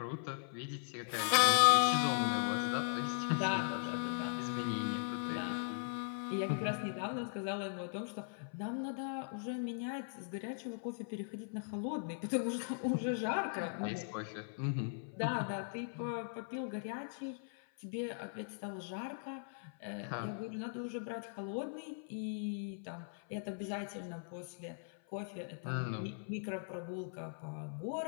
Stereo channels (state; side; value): silent; right; 52 dB below the other